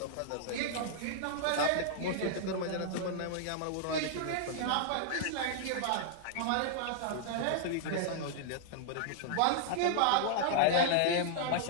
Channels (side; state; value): both; different; correlation -0.01